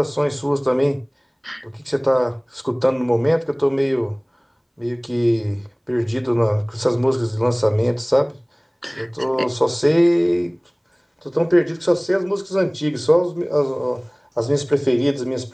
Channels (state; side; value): identical; both; correlation 1.00